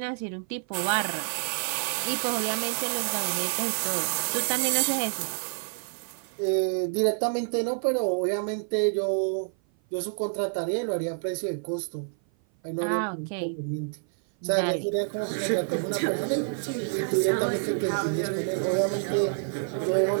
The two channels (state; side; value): silent; left; 56 dB below the other